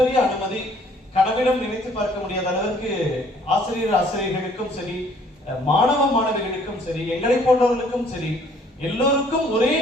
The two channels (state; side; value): normal; both; correlation 0.60